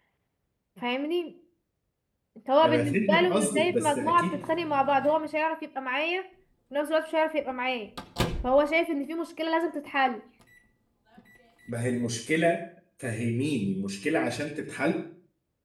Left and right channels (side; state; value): both; identical; correlation 1.00